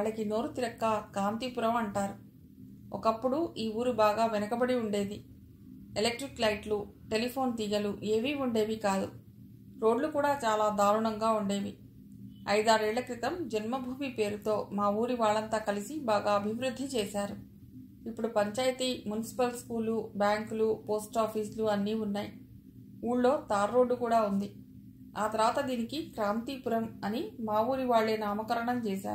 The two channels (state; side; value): identical; both; correlation 1.00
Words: నోరు తిరక్క కాంతిపురం అంటారు. ఒకప్పుడు ఈ ఊరు బాగా వెనకబడి ఉండేది. ఎలక్ట్రిక్ లైట్లు, టెలిఫోన్ తీగలు ఏవీ ఉండేవి కాదు. రోడ్లు కూడా చాలా దారుణంగా ఉండేవి. 5-6 ఏళ్ల క్రితం జన్మభూమి పేరుతో మా ఊరి వాళ్ళంతా కలిసి బాగా అభివృద్ధి చేశారు. ఇప్పుడు పంచాయతీ, మున్సిపల్ స్కూలు, బ్యాంకులు, పోస్ట్ ఆఫీసులు అన్నీ ఉన్నాయి. ఊళ్ళో తార్ రోడ్డు కూడా ఉంది. ఆ తర్వాత దీనికి క్రాంతిపురం అని మా ఊరి వాళ్లే నామకరణం